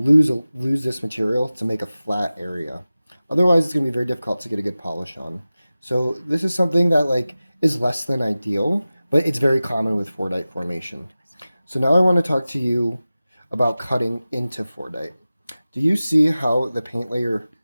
this material to make a flat area. Otherwise, it's going to be very difficult to get a good polish on. So this is something that is less than ideal, but it's very common with Fordite formation. So now I want to talk to you about cutting into Fordite. Do you see how the paint layer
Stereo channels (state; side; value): inverted; both; correlation -0.96